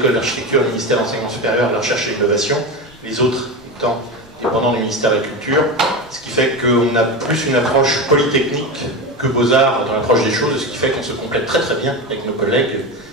d'architecture du ministère de l'Enseignement supérieur, de la Recherche et de l'Innovation, les autres étant dépendants du ministère de la Culture, ce qui fait qu'on a plus une approche polytechnique que Beaux-Arts dans l'approche des choses, ce qui fait qu'on se complète très très bien avec nos collègues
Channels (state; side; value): normal; both; correlation 0.21